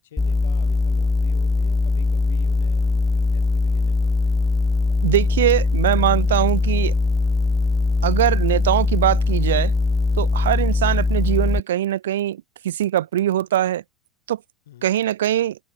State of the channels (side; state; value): both; normal; correlation 0.43